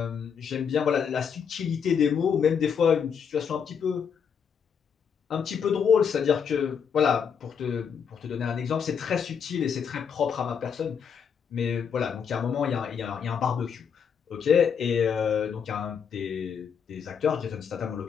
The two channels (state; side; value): quieter; right; 7.1 dB